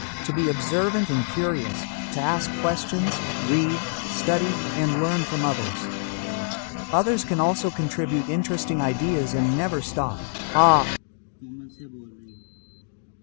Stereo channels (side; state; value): right; silent; digital silence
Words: to be observant and curious, to ask questions, read, study, and learn from others. Others can also contribute interesting ideas and never stop. Common से बोल रही